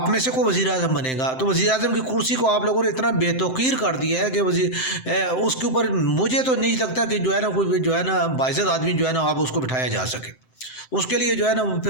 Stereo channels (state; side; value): late; right; 7.7 ms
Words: میں سے کوئی وزیر اعظم بنے گا تو وزیر اعظم کی کرسی کو آپ لوگوں نے اتنا بے توقیر کر دیا ہے کہ اس کے اوپر مجھے تو نہیں لگتا کہ جو ہے نا کوئی جو ہے نا باعزت آدمی جو ہے نا آپ اس کو بٹھایا جا سکے۔ اس کے لیے جو ہے نا